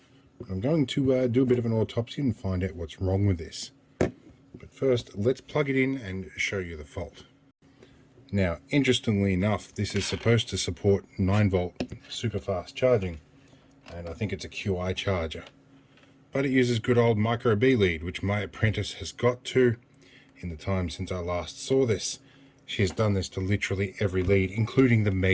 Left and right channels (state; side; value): identical; both; correlation 1.00